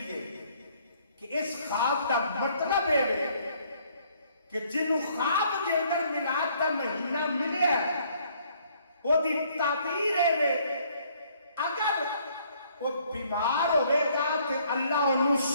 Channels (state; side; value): inverted; both; correlation -0.64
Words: ہے کہ اس خواب کا مطلب ہے کہ جنہوں خواب کے اندر میلاد کا مہینہ ملے وہ دی تعبیر ہے اگر وہ بیمار ہوئے گا تو اللہ انہوں